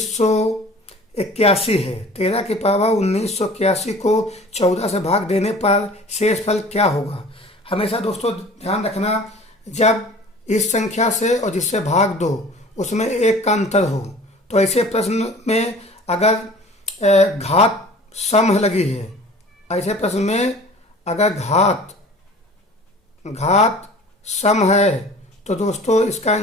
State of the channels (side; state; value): both; normal; correlation 0.45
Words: है। 13 की पावर 1981 को 14 से भाग देने पर शेष फल क्या होगा। हमेशा दोस्तों ध्यान रखना, जब इस संख्या से और जिससे भाग दो उसमें 1 का अंतर हो, तो ऐसे प्रश्न में अगर घात सम लगी है, ऐसे प्रश्न में अगर घात सम है तो दोस्तों इसका